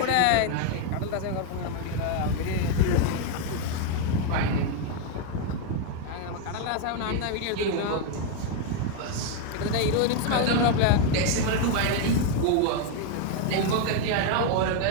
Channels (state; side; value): different; both; correlation 0.01